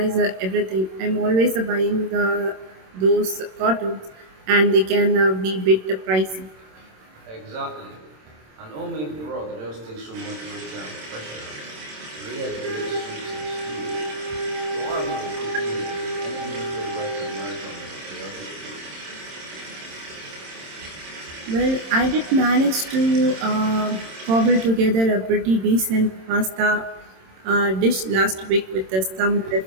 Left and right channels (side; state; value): left; late; 27 ms